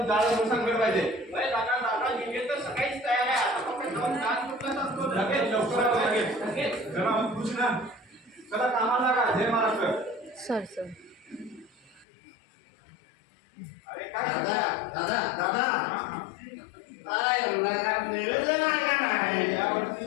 जाळं सांगणार पाहिजे. डीजे तर सकाळीच तयार आहे. आता फक्त डान्स ग्रुपलाच असतो. लगेच लवकर लगेच जरा खुश ना. चला कामाला लागा. जय महाराष्ट्र. सर अरे काय यावर्षी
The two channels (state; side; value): drops out; right; at 12.1 s